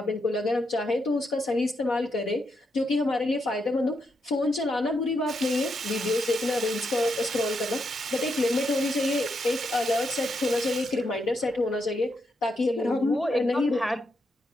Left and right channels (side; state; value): both; normal; correlation 0.82